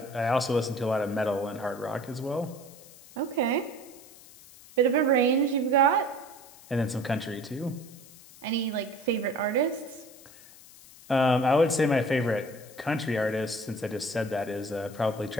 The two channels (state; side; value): noise; left; hiss, 21 dB below the sound